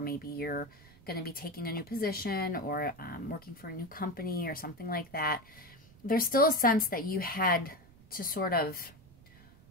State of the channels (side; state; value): right; noise; rumble, 24 dB below the sound